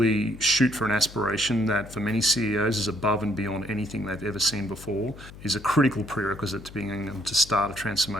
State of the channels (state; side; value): noise; left; hum, 17 dB below the sound